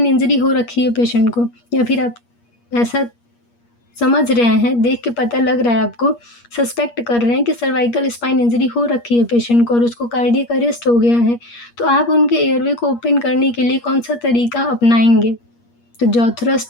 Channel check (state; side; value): late; right; 8.5 ms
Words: इंजरी हो रखी है पेशेंट को, या फिर आप ऐसा समझ रहे हैं, देख के पता लग रहा है आपको, सस्पेक्ट कर रहे हैं कि सर्वाइकल स्पाइन इंजरी हो रखी है पेशेंट को और उसको कार्डियक अरेस्ट हो गया है, तो आप उनके एयरवे को ओपन करने के लिए कौन सा तरीका अपनाएंगे। तो जॉ